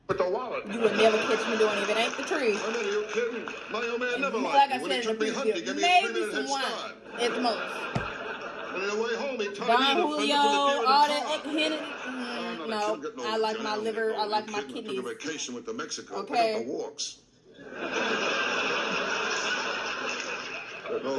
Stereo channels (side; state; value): both; identical; correlation 1.00